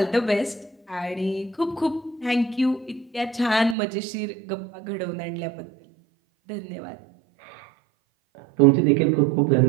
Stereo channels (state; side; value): drops out; left; at 3.8 s